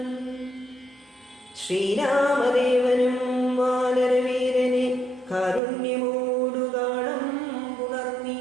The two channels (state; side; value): drops out; left; at 5.6 s